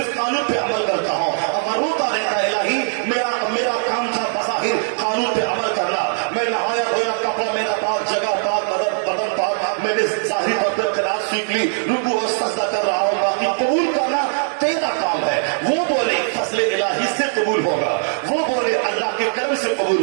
قانون پہ عمل کرتا ہوں، اب روتا رہتا ہے الہی میرا کام تھا بظاہر قانون پہ عمل کرنا، میں نہایا دھویا، کپڑا میرا پاک، جگہ پاک، بدن پاک، میں نے ظاہری طور پر قرات سیکھ لی، رکوع اور سجدہ کر رہا ہوں، باقی قبول کرنا تیرا کام ہے. وہ بولے فضل الہی سے قبول ہوگا، وہ بولے اللہ کے کرم سے قبول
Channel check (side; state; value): left; silent; digital silence